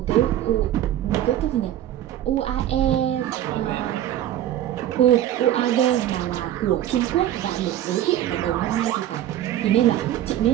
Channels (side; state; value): left; quieter; 12.2 dB